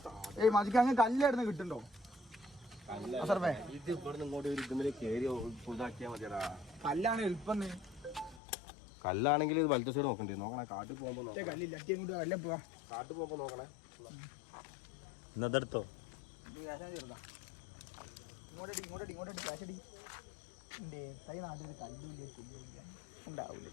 ഏയ് മജിക്ക് അങ്ങ് കല്ലായിരുന്നു കിട്ടുണ്ടോ? ഇത് ഇവിടെ ഇങ്ങോട്ട് ഒരു ഇതുമ്മല് കേറി ഫുള്ളാക്കിയാ മതിയടാ. കല്ലാണ് എളുപ്പം. കല്ലാണെങ്കിൽ ഇത് വലത്തെ സൈഡ് നോക്കണ്ടേ? നോക്കണേ കാട്ടിൽ പോകുമ്പോ കല്ലില്ല കല്ല പോവാ. കാട്ടിൽ പോകുമ്പോ നോക്കണേ. ഇന്നതെടുത്തോ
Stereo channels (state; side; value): drops out; right; at 8.4 s